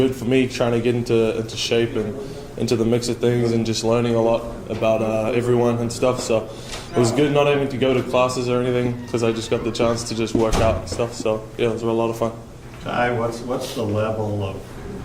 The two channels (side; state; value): both; identical; correlation 1.00